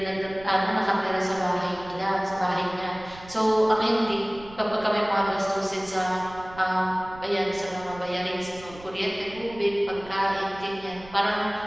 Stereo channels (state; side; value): noise; right; rumble, 19 dB below the sound